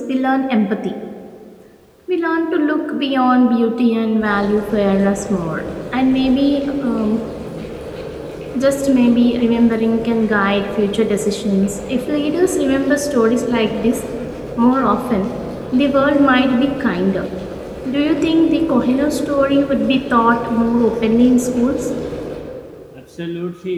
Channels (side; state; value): both; identical; correlation 1.00